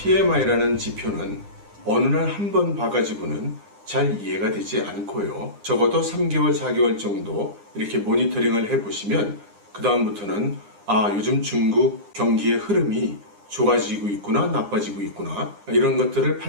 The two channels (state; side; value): late; left; 9.8 ms